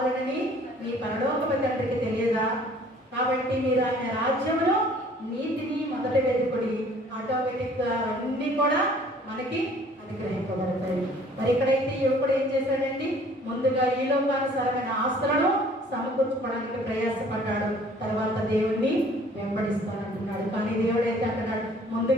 మీ పరలోకపు తండ్రికి తెలియదా? కాబట్టి మీరు ఆయన రాజ్యంలో నీతిని మొదట వెతుకుడి, ఆటోమేటిక్గా అన్నీ కూడా మనకి అనుగ్రహింపబడతాయి. మరి ఇక్కడైతే యువకుడు ఏం చేశాడండి? ముందుగా ఈ లోకానుసారమైన ఆస్తులను సమకూర్చుకోవడానికి ప్రయాసపడ్డాడు. తర్వాత దేవుణ్ణి వెంబడిస్తానంటున్నాడు. కానీ దేవుడు అయితే అంటున్నాడు,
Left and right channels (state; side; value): normal; both; correlation 0.54